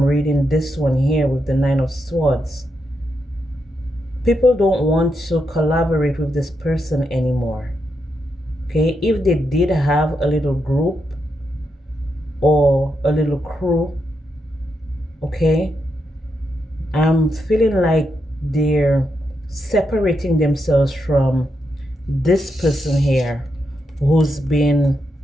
reading this one here with the Nine of Swords. People don't want to collaborate with this person anymore, okay? If they did have a little group or a little crew, okay, I'm feeling like they're separating themselves from this person here who's been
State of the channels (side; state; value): both; normal; correlation 0.83